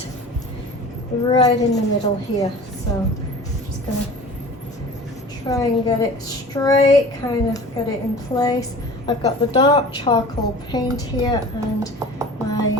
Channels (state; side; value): normal; both; correlation 0.40